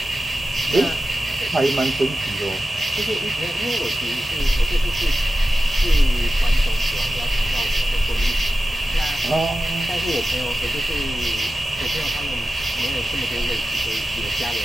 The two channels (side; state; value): both; normal; correlation 0.94